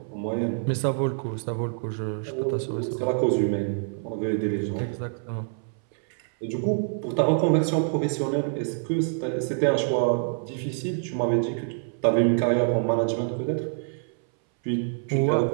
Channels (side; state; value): left; silent; 61 dB below the other